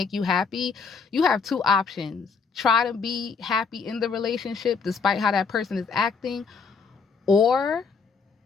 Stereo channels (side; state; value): right; quieter; 5.2 dB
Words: you happy, you have two options. Try to be happy in the relationship despite how that person is acting, or